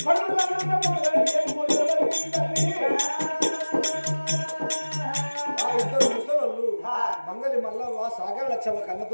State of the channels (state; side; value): inverted; both; correlation -1.00